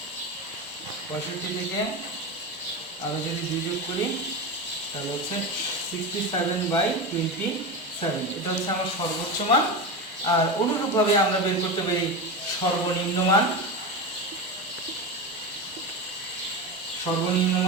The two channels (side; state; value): both; normal; correlation 0.21